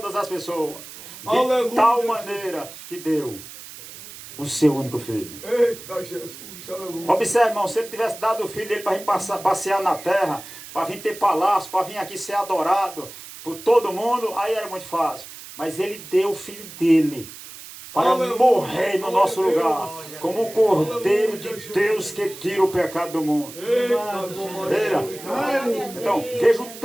as pessoas, de tal maneira que deu o seu único filho. Eita Jesus, aleluia. Observe, irmão, se ele tivesse dado o filho dele para vir passear na terra, para vir ter palácio, para vir aqui ser adorado por todo mundo, aí era muito fácil. Mas ele deu o filho dele para morrer no nosso lugar, como o Cordeiro de Deus que tira o pecado do mundo. Veja. Então, veja o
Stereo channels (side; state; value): right; noise; hiss, 15 dB below the sound